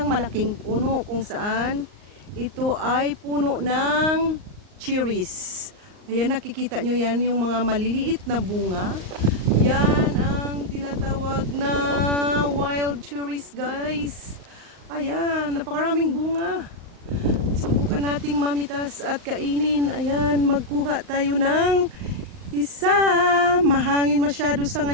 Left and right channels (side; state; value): left; late; 38 ms